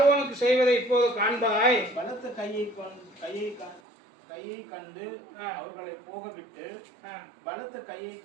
செய்வதை இப்போது காண்பாய், பலத்த கையை கண்டு அவர்களை போகவிட்டு, பலத்த கையை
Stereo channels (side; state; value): left; drops out; at 3.8 s